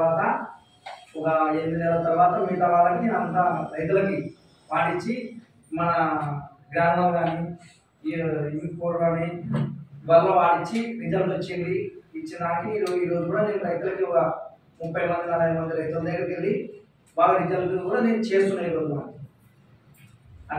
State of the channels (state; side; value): identical; both; correlation 1.00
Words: ఒక 8 నెలల తర్వాత మిగతా వాళ్ళకి నేను అంతా రైతులకి వాడించి మన గ్రామం కానీ ఇంకోటి కానీ వల్ల వాడించి రిజల్ట్ వచ్చింది. ఇచ్చినాక ఈరోజు కూడా నేను రైతులకి ఒక 30 మంది 40 మంది రైతుల దగ్గరికి వెళ్ళి బాగా రిజల్ట్ కూడా నేను చేస్తున్నాను ఈరోజు.